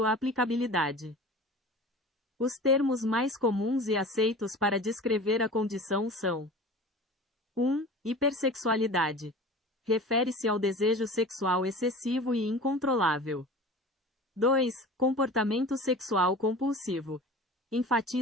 aplicabilidade. Os termos mais comuns e aceitos para descrever a condição são: 1. Hipersexualidade. Refere-se ao desejo sexual excessivo e incontrolável. 2. Comportamento sexual compulsivo.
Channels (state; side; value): normal; both; correlation 0.38